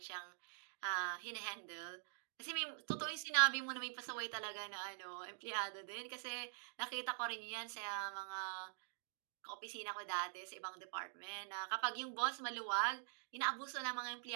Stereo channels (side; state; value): left; silent; digital silence